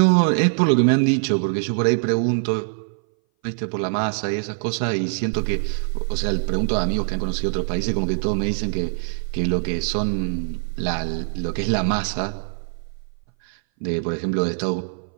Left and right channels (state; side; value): silent; left; 59 dB below the other